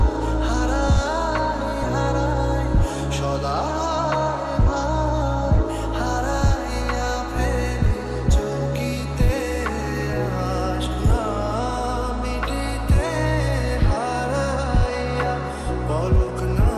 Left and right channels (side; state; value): both; identical; correlation 1.00